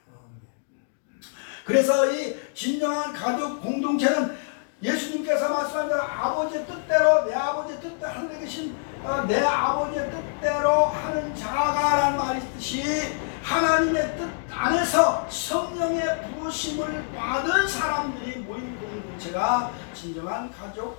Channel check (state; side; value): silent; right; digital silence